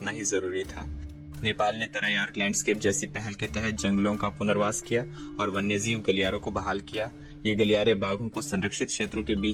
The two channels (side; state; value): both; identical; correlation 1.00